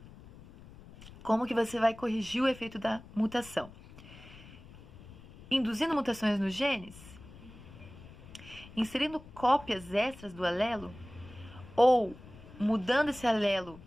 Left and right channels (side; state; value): left; noise; rumble, 19 dB below the sound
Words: Como que você vai corrigir o efeito da mutação? Induzindo mutações nos genes, inserindo cópias extras do alelo, ou mudando esse alelo